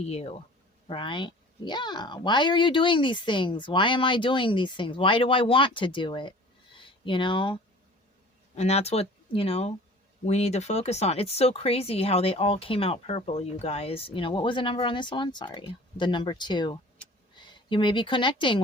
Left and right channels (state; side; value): normal; both; correlation 0.45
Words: you, right? Yeah. Why are you doing these things? Why am I doing these things? Why do I want to do it? And that's what, we need to focus on. It's so crazy how they all came out purple, you guys. What was the number on this one? Sorry. The number 2. You may be connecting